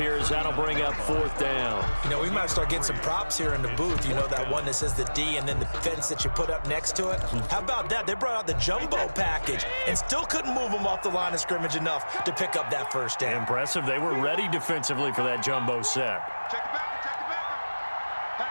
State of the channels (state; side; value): inverted; both; correlation -1.00